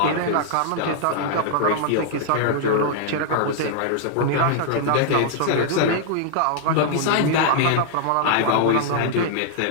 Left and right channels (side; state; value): both; different; correlation -0.01